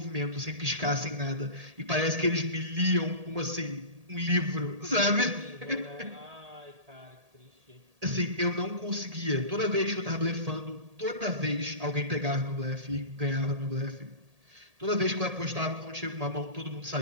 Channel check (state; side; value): late; left; 1.8 ms